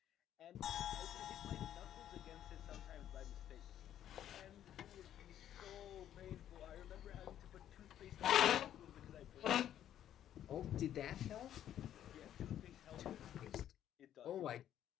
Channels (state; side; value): quieter; right; 11.0 dB